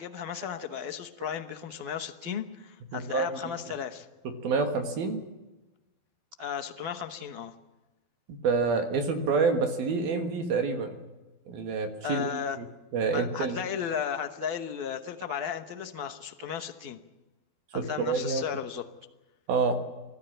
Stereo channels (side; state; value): left; late; 12 ms